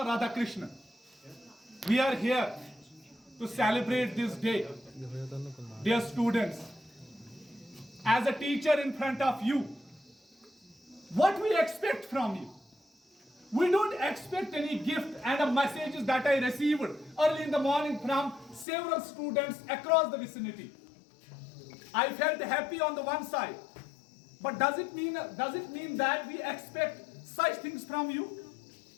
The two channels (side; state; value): right; drops out; at 18.7 s